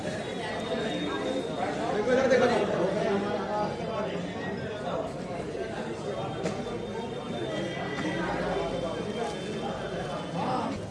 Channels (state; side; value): identical; both; correlation 1.00